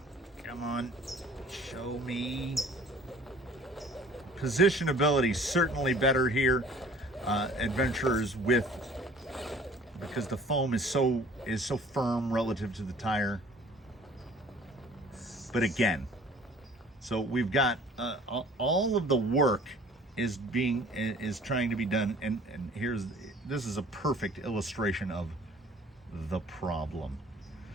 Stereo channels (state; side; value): normal; both; correlation 0.51